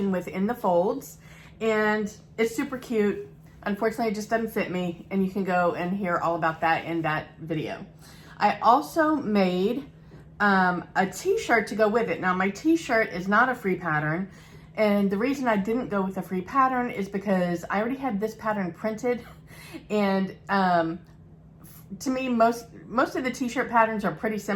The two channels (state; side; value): identical; both; correlation 1.00